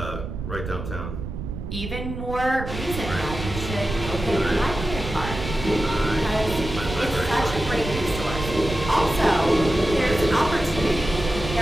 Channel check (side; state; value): right; noise; rumble, 7 dB below the sound